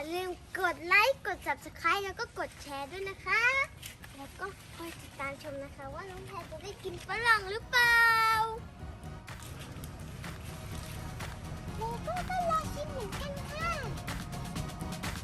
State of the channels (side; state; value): both; identical; correlation 1.00